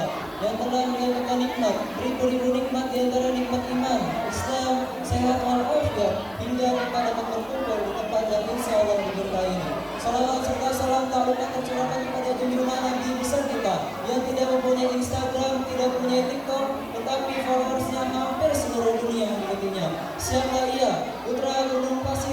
yang telah memberikan nikmat, beribu-ribu nikmat di antara nikmat iman, Islam, sehat walafiat, hingga kita dapat berkumpul di tempat yang insya Allah diberkahi ini. Salawat serta salam tak lupa tercurahkan kepada junjungan Nabi besar kita yang tidak mempunyai Instagram, tidak mempunyai TikTok, tetapi followersnya hampir 9 seluruh dunia mengikutinya. Siapa ia? Putra gunung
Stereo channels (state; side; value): identical; both; correlation 1.00